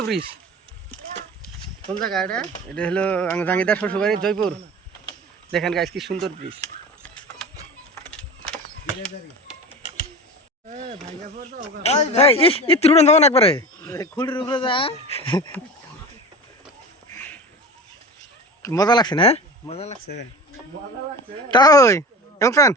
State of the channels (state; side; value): normal; both; correlation 0.33